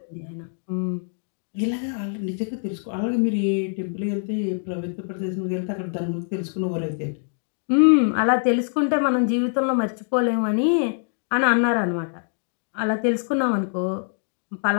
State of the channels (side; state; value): right; silent; 62 dB below the other